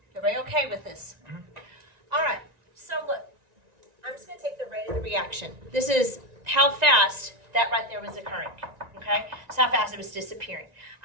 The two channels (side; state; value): left; late; 1.9 ms